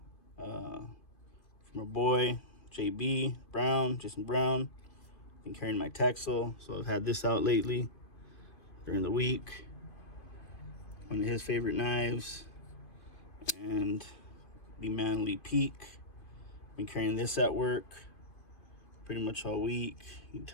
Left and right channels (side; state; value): right; late; 2.5 ms